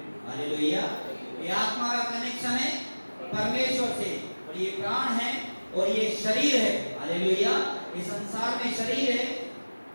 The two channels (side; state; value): both; inverted; correlation -1.00